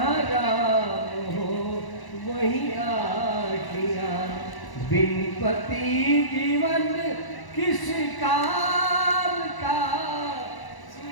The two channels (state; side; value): late; right; 1.0 ms